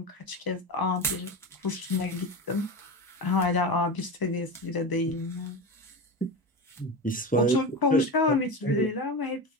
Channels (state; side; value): normal; both; correlation 0.23